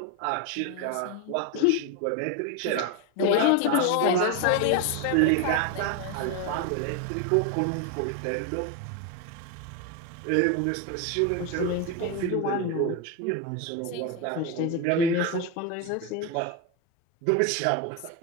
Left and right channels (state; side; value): different; both; correlation 0.02